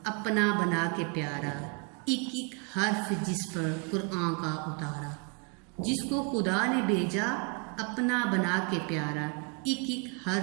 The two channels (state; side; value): quieter; left; 33.2 dB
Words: अपना बना के प्यारा, एक एक हर्फ जिस पर कुरान का उतारा। जिसको खुदा ने भेजा अपना बना के प्यारा, एक एक